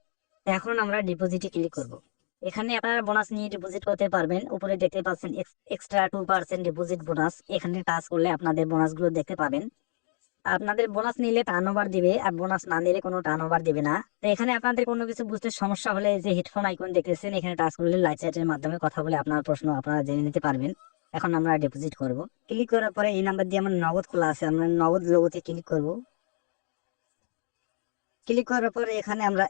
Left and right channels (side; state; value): right; silent; digital silence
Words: এখন আমরা ডিপোজিটে ক্লিক করব। এখানে আপনারা বোনাস নিয়ে ডিপোজিট করতে পারবেন। উপরে দেখতে পাচ্ছেন এক্সট্রা 2% ডিপোজিট বোনাস। এখানে টাচ করলে আপনাদের বোনাসগুলো দেখতে পাবেন। আপনাদের বোনাস নিলে টার্ন ওভার দিবে, আর বোনাস না নিলে কোনো টার্ন ওভার দিবে না। তো এখানে আপনাদের কোনো কিছু বুঝতে সমস্যা হলে যে হেডফোন আইকন দেখতেছেন, এখানে টাচ করলে লাইট চ্যাটের মাধ্যমে কথা বলে আপনার প্রশ্ন আপনারা জেনে নিতে পারবেন। এখন আমরা ডিপোজিট করব। ক্লিক করার পরে এই নাম্বার দিয়ে আমার নগদ খোলা আছে, আমরা নগদ লোগোতে ক্লিক করব। ক্লিক করার পরে এখানে আমরা